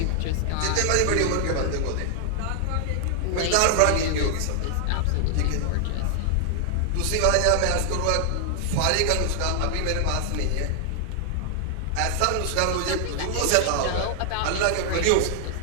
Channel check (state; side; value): different; both; correlation 0.00